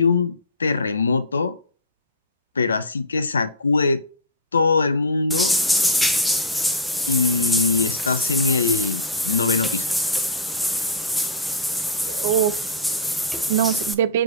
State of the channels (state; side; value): normal; both; correlation -0.12